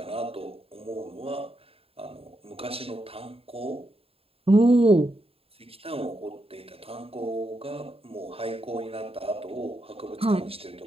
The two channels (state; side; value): late; left; 0.28 ms